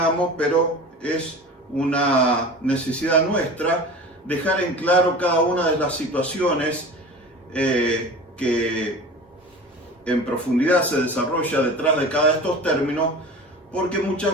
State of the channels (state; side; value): normal; both; correlation 0.36